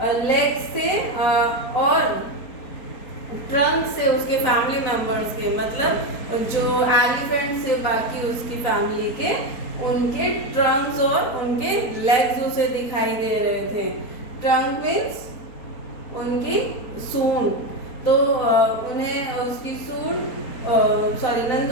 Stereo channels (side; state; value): right; late; 4.3 ms